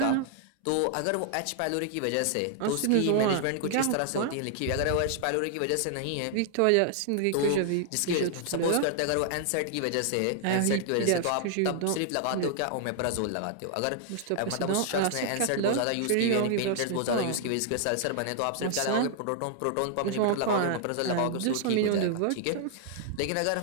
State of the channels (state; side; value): different; both; correlation 0.00